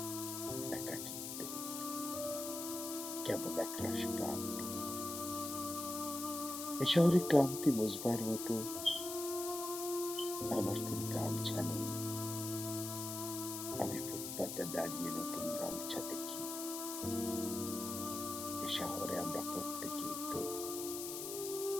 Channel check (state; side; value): noise; left; hiss, 6 dB below the sound